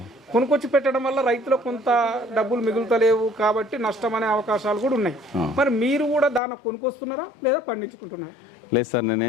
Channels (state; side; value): drops out; right; at 6.4 s